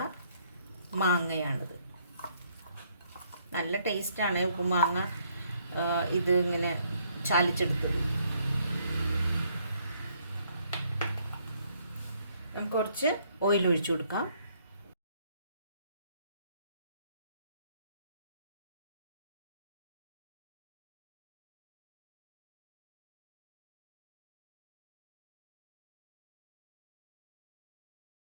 മാങ്ങയാണിത്. നല്ല ടേസ്റ്റാണ് ഉപ്പുമാങ്ങ ഇത് ഇങ്ങനെ ചാലിച്ചെടുത്തത്. നമുക്ക് കുറച്ച് ഓയിൽ ഒഴിച്ചു കൊടുക്കാം.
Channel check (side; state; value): both; inverted; correlation -0.67